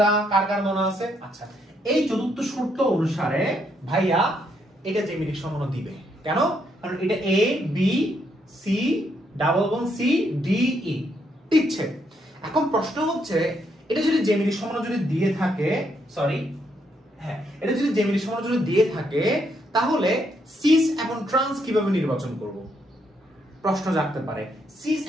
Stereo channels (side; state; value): both; normal; correlation 0.75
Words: কার কার মনে আছে? আচ্ছা, এই চতুর্থ শর্ত অনুসারে ভাইয়া এটা জ্যামিতিক সমানু দিবে। কেন? কারণ এটা A B C double bond C D E দিচ্ছে। এখন প্রশ্ন হচ্ছে, এটা যদি জ্যামিতিক সমানু যদি দিয়ে থাকে, এটা যদি জ্যামিতিক সমানু যদি দিয়ে থাকে, তাহলে সিস এবং ট্রান্স কিভাবে নির্বাচন করব? প্রশ্ন জাগতে পারে। সিস